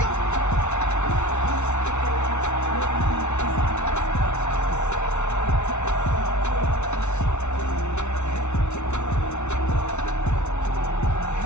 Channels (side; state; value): right; late; 0.82 ms